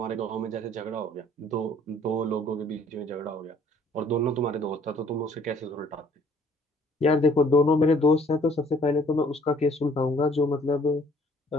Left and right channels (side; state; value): both; normal; correlation 0.58